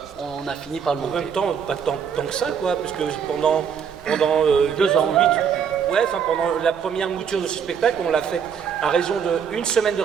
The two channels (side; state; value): left; quieter; 7.3 dB